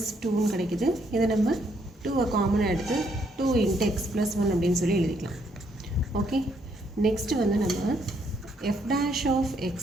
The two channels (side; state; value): both; normal; correlation 0.72